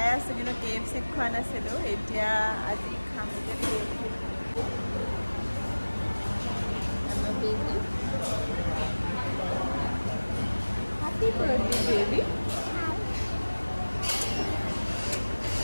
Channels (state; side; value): inverted; both; correlation -1.00